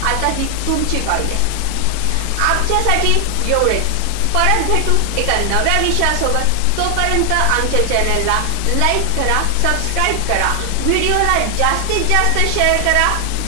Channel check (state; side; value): different; both; correlation 0.00